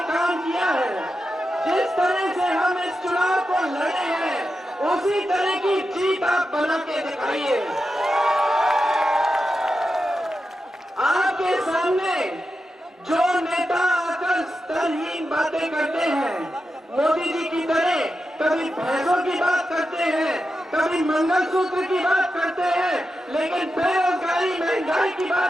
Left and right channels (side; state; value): both; normal; correlation 0.89